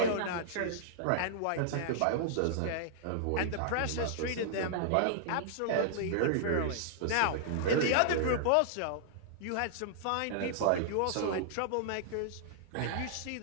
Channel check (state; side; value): different; both; correlation -0.01